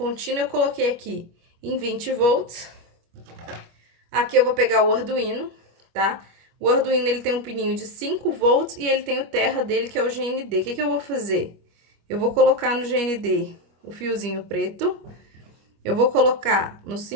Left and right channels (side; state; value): left; late; 25 ms